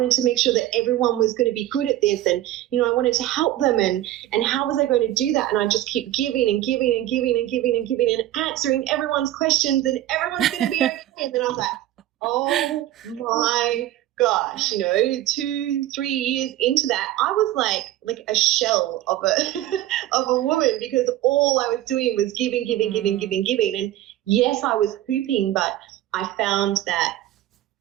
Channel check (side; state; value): left; quieter; 14.1 dB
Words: to make sure that everyone was going to be good at this, and, I wanted to help them, and how was I going to do that? And I just keep giving and giving and giving and giving and giving and answering everyone's questions, and everyone's going to be okay. And then I was like, oh my gosh, 2-3 years into that, I was like a shell of a woman, because all I was doing was giving. And yes, I was hooping, but I found that